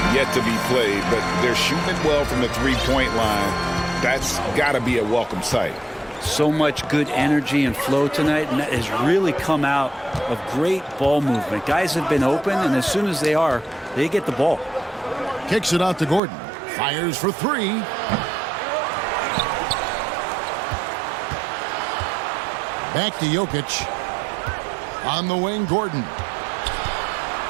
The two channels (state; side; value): drops out; left; at 16.2 s